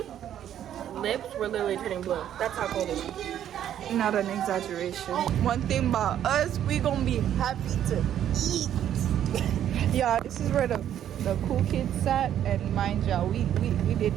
lips were literally turning blue. That's how cold it was. Not an exaggeration. One thing about us, we gonna be happy to eat. Yeah, this is where the cool kids sat, and mind y'all, we did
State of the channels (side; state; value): left; quieter; 10.6 dB